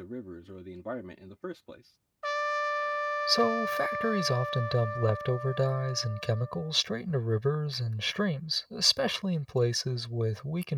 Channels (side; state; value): both; identical; correlation 1.00